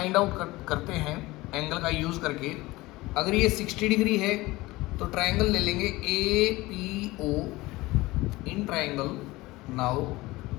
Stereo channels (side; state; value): right; quieter; 20.1 dB